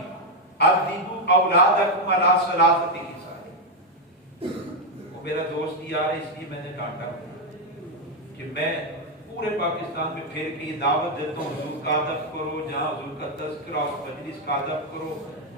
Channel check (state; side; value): normal; both; correlation 0.03